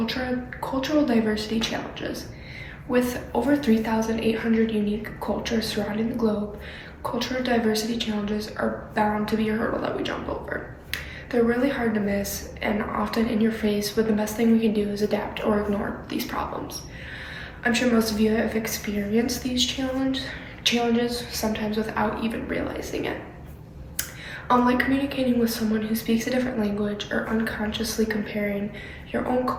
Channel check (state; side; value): identical; both; correlation 1.00